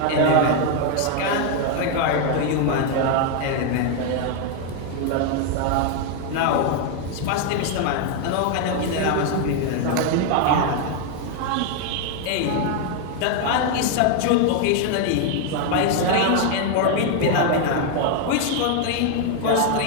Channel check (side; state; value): both; different; correlation 0.00